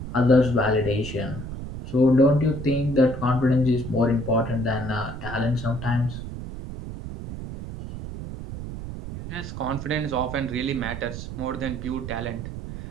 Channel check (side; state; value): right; noise; rumble, 9 dB below the sound